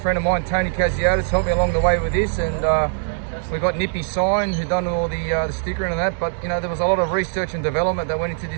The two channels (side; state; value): left; silent; 65 dB below the other